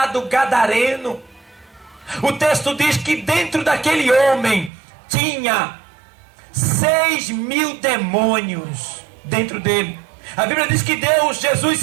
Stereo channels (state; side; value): drops out; left; at 4.7 s